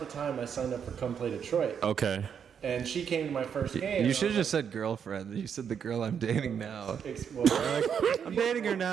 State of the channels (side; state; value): left; quieter; 7.6 dB